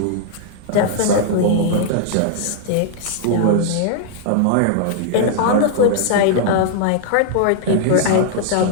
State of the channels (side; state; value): both; different; correlation -0.01